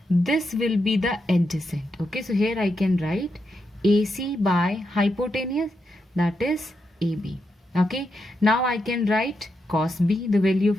this will be the adjacent. Okay, so here I can write AC by hypotenuse, that is AB. Okay, now I can write cos B, the value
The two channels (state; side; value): normal; both; correlation 0.84